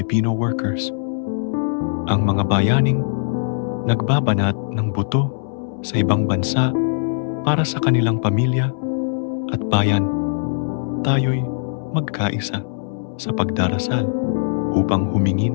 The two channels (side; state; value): right; silent; 65 dB below the other